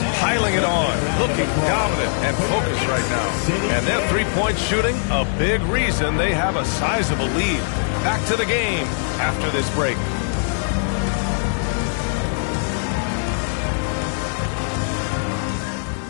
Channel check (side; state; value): right; silent; digital silence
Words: piling it on. Looking dominant and focused right now. And their three-point shooting, a big reason they have a sizable lead. Back to the game after this break.